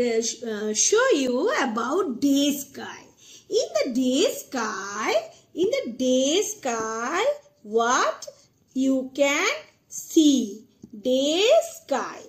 show you about day sky. In the day sky, what you can see? Day sky.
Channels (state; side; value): identical; both; correlation 1.00